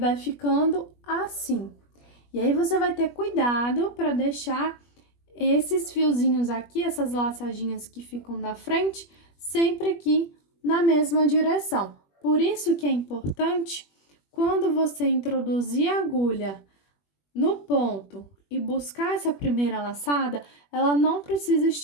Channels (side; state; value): right; late; 21 ms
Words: ficando assim. E aí, você vai ter cuidado para deixar esses fiozinhos aqui, essas laçadinhas que ficam na frente, sempre aqui na mesma direção. Por isso que é importante, quando você introduzir a agulha no ponto e buscar essa primeira laçada, ela não precisa